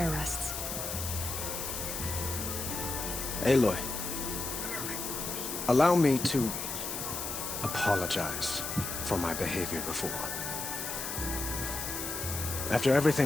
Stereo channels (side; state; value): left; noise; hiss, 4 dB below the sound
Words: rests. Aloy, allow me to apologize for my behavior before. After